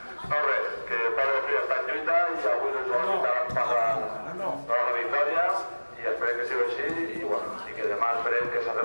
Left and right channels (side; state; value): both; inverted; correlation -1.00